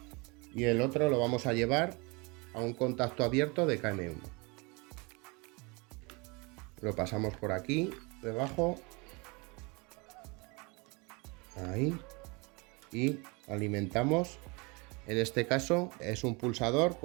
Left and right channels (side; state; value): left; quieter; 28.4 dB